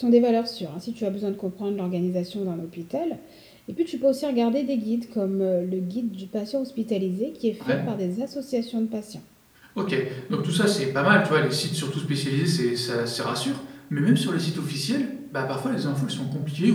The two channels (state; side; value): identical; both; correlation 1.00